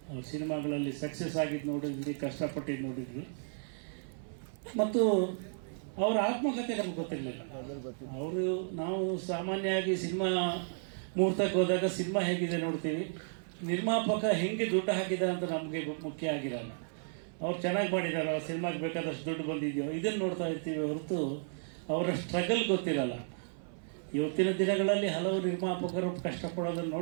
ಅವ್ರ ಸಿನಿಮಾಗಳಲ್ಲಿ ಸಕ್ಸಸ್ ಆಗಿದ್ದು ನೋಡಿದ್ವಿ, ಕಷ್ಟಪಟ್ಟಿದ್ದು ನೋಡಿದ್ವಿ. ಮತ್ತು ಅವರ ಆತ್ಮಕಥೆ ನಮ್ಗೆ ಗೊತ್ತಿರಲಿಲ್ಲ. ನಾವು ಸಾಮಾನ್ಯವಾಗಿ ಸಿನಿಮಾ ಮುಹೂರ್ತಕ್ಕೆ ಹೋದಾಗ ಸಿನಿಮಾ ಹೇಗಿದೆ ನೋಡ್ತೀವಿ, ನಿರ್ಮಾಪಕ ಹೆಂಗೆ ದುಡ್ಡು ಹಾಕಿದ ಅಂತ ನಮಗೆ ಮುಖ್ಯ ಆಗಿರಲ್ಲ. ಅವ್ರು ಚೆನ್ನಾಗಿ ಮಾಡಿದ್ದಾರೆ, ಅವ್ರ ಸಿನಿಮಾಗೆ ಬೇಕಾದಷ್ಟು ದುಡ್ಡು ಬಂದಿದೆಯೋ ಇದನ್ನು ನೋಡ್ತಾ ಇರ್ತೀವಿ ಹೊರತು ಅವರ ಸ್ಟ್ರಗಲ್ ಗೊತ್ತಿರಲ್ಲ. ಇವತ್ತಿನ ದಿನಗಳಲ್ಲಿ ಹಲವು ನಿರ್ಮಾಪಕರು ಕಷ್ಟಪಡೋದನ್ನು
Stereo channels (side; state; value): left; silent; 55 dB below the other